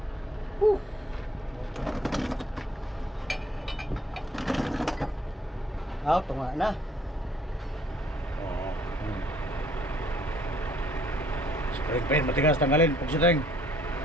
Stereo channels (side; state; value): both; normal; correlation 0.62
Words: Tunga na. Spring paint, matigas, tanggalin. Pagsiteng.